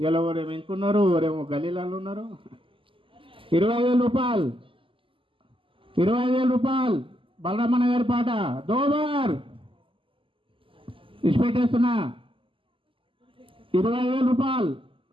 ఎవరేమో ఇంకున్నారు, ఎవరేమో గలీలాలు ఉన్నారు. 25,000 రూపాయలు, 25,000 రూపాయలు బలరామన్న గారి పాట దోబార్ ఇచ్చిపెట్టేస్తున్నా. 25,000 రూపాయలు,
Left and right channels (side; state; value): left; late; 0.25 ms